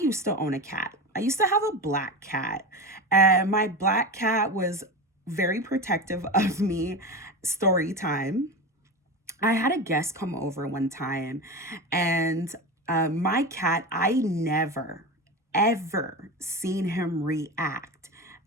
to own a cat. I used to have a black cat, and my black cat was very protective of me. Story time. I had a guest come over one time, and my cat, I never, ever seen him react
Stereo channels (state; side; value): normal; both; correlation 0.23